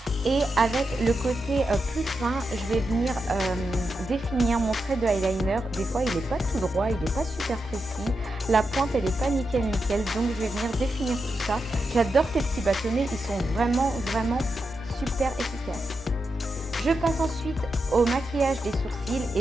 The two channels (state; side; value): normal; both; correlation 0.87